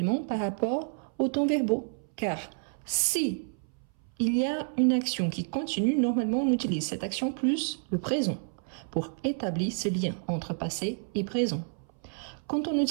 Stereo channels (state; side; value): silent; left; 58 dB below the other